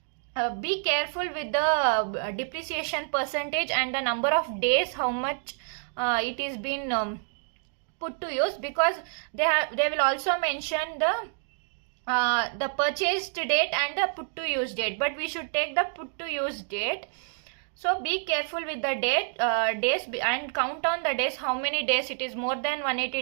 be careful with the depreciation percentage and the number of days how much it is been put to use, because they will also mention the purchased date and the put to use date, but we should take the put to use date. So be careful with the days and count on the days, how many days it is, more than 180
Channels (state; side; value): silent; left; 59 dB below the other